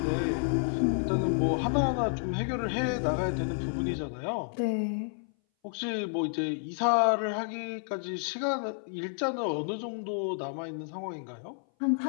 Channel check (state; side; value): silent; right; 57 dB below the other